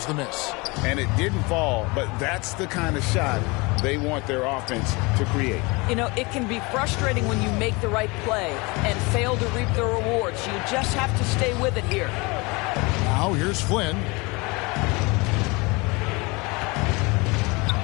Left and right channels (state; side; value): quieter; right; 26.2 dB